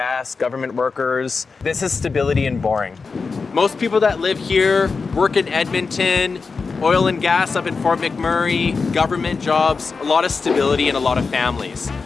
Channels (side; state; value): right; quieter; 4.7 dB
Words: government workers. This is stability and boring. Most people that live here work in Edmonton, oil and gas up in Fort McMurray, government jobs, a lot of stability and a lot of families.